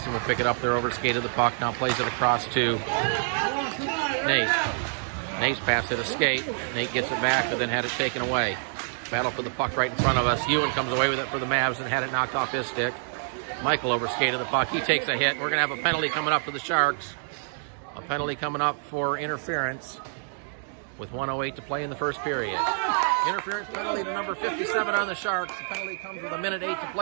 will pick it up there over the skate of the puck. Now plays it across to Nate. Nate's pass hit a skate. Nate gets it back, but then had it taken away. Battle for the puck right in front of us. Ewan comes away with it for the Mavs and had it knocked off his stick. Michael over skate of the puck. He takes a hit. We're going to have a penalty coming up for the Sharks. A penalty coming up for interference with 1:08 to play in the first period. Interference penalty to number 57 on the Sharks. The penalty comes with 1:08 to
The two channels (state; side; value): silent; left; digital silence